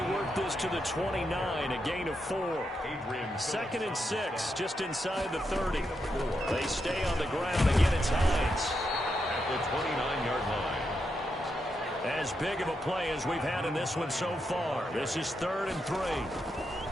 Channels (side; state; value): both; normal; correlation 0.83